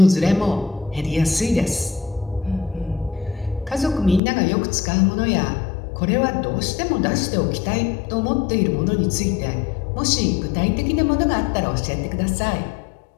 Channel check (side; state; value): right; drops out; at 4.2 s